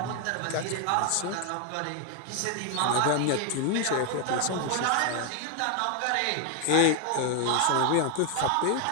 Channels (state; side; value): different; both; correlation 0.01